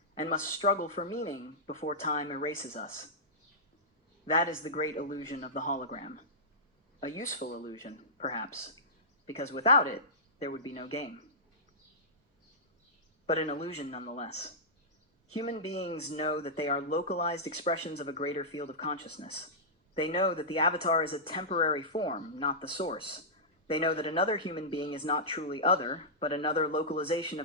and must struggle for meaning before time erases us. That is the great illusion of the hologram. A useful illusion, perhaps, because without it, there would be no game. But an illusion nonetheless. Human beings know that they are localized expressions of a greater field of consciousness. They know that the avatar is a temporary form, not the source. They know that another human being is not truly other, but another localization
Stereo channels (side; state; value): both; normal; correlation -0.14